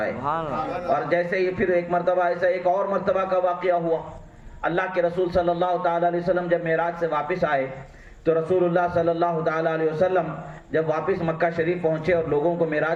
اور جیسے ہی پھر ایک مرتبہ ایسا ایک اور مرتبہ کا واقعہ ہوا. اللہ کے رسول صلی اللہ تعالی علیہ وسلم جب معراج سے واپس آئے تو رسول اللہ صلی اللہ تعالی علیہ وسلم جب واپس مکہ شریف پہنچے اور لوگوں کو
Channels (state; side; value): identical; both; correlation 1.00